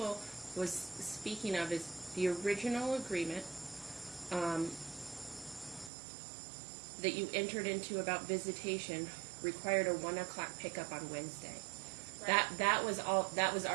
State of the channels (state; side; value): drops out; left; at 5.9 s